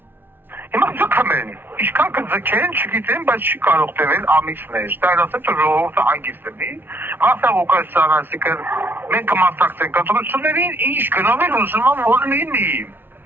Հիմա ձգում են, ինչքան կձգեն, չգիտեմ, բայց չի կարող տևել ամիսներ, դա էլ ասեմ, որ ժողովուրդը հանգիստ լինի, Վարդան Ղուկասյանը, այսինքն մենք կմասնակցենք ընտրություններին, ինչ գնով էլ ուզում եմ որ լինի,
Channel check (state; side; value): late; left; 0.10 ms